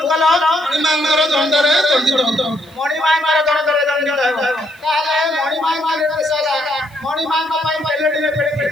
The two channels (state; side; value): noise; left; hiss, 30 dB below the sound